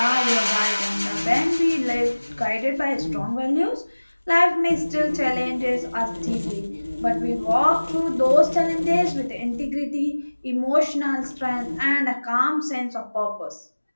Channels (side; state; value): both; inverted; correlation -1.00